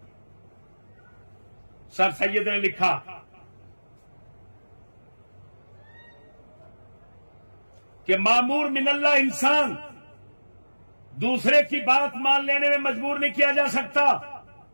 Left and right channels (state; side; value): inverted; both; correlation -1.00